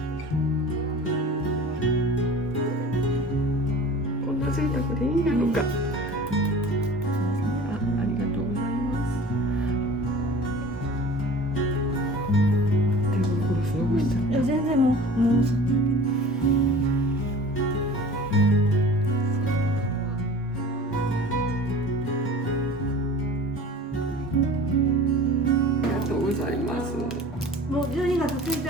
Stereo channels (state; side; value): normal; both; correlation 0.42